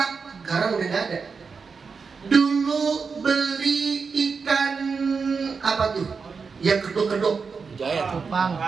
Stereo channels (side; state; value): left; quieter; 5.2 dB